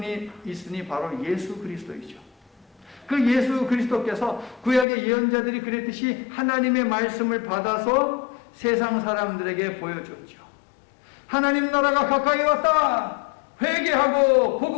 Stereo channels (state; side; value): drops out; right; at 4.9 s